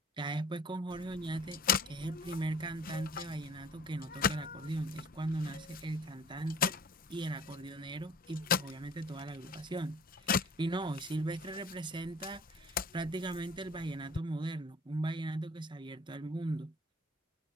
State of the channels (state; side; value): normal; both; correlation 0.50